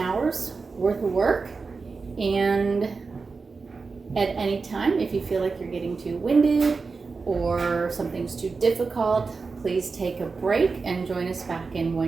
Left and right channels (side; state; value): left; quieter; 4.5 dB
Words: worth of work. And at any time, if you feel like you're getting too winded or something's too difficult, please take a break and join us back in